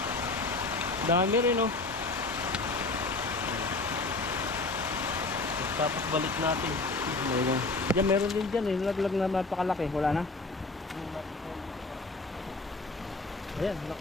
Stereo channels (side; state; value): right; quieter; 3.4 dB